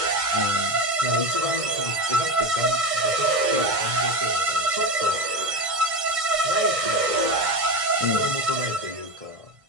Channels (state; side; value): late; left; 1.6 ms